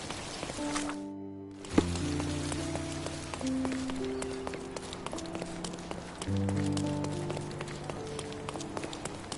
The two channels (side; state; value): both; identical; correlation 1.00